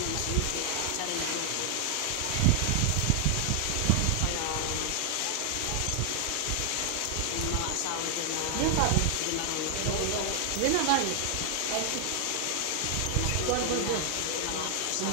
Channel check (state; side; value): different; both; correlation 0.00